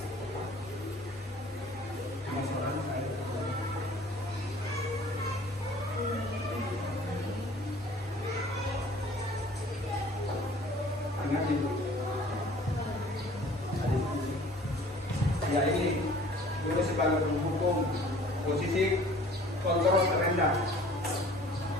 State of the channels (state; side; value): normal; both; correlation 0.50